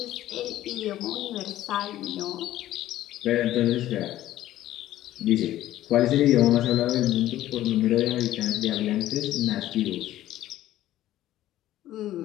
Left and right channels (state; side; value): quieter; right; 13.9 dB